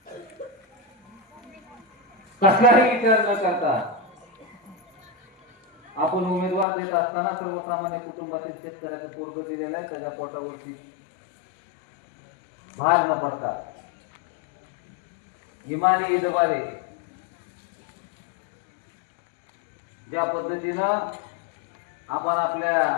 कसलाही विचार न करता आपण उमेदवार देत असताना सर्वसामान्य कुटुंबातील शेतकऱ्याचं पोरग दिलेलं आहे, त्याच्या पोटावरती भार न पडता इमानी इदबारे ज्या पद्धतीनं आपण आपल्या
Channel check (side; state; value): right; drops out; at 6.7 s